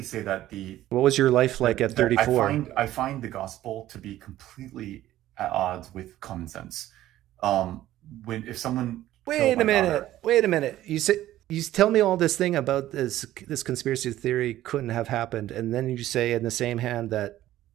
say that what was your life like at 34? I find the gospel to be completely at odds with common sense. If someone wait a minute, you tell me all this thing about this conspiracy theory couldn't have happened, and then you say in the same hand that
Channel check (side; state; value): left; quieter; 14.1 dB